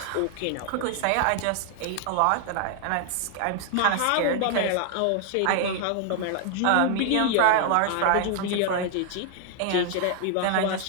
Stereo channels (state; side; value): different; both; correlation 0.00